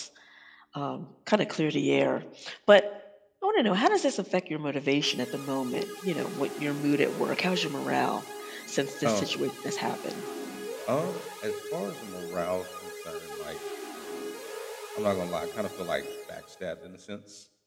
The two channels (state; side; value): identical; both; correlation 1.00